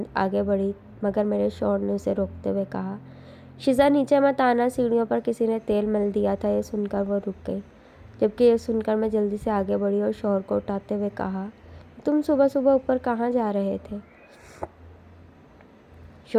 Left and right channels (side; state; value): both; identical; correlation 1.00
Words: آگے بڑھی، مگر میرے شوہر نے اسے روکتے ہوئے کہا، شیزا نیچے مت آنا، سیڑھیوں پر کسی نے تیل مل دیا تھا۔ یہ سن کر وہ رک گئی، جبکہ یہ سن کر میں جلدی سے آگے بڑھی اور شوہر کو اٹھاتے ہوئے کہا، تم صبح صبح اوپر کہاں جا رہے تھے؟